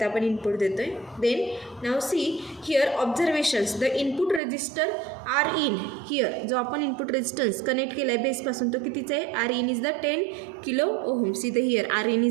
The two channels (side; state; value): left; drops out; at 4.4 s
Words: आपण input देतोय. Then now see here observations. The input resistor R in here जो आपण इनपुट रेजिस्टन्स कनेक्ट केला आहे बेसपासून तो कितीचा आहे. R in is the 10 kilo ohm. See the here R in